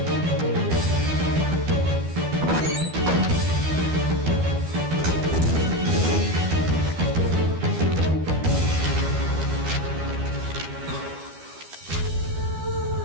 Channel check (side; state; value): left; late; 12 ms